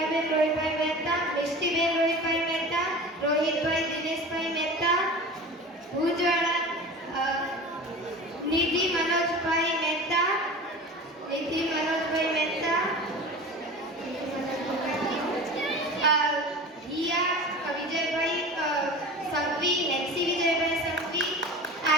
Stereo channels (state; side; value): normal; both; correlation 0.35